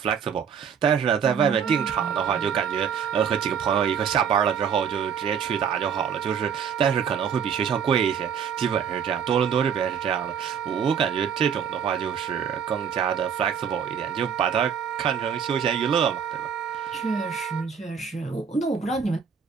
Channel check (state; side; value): quieter; left; 7.4 dB